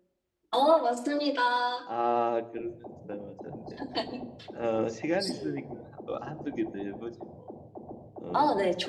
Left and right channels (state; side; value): identical; both; correlation 1.00